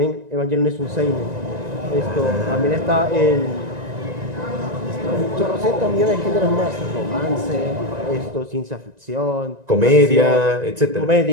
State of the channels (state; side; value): late; left; 1.9 ms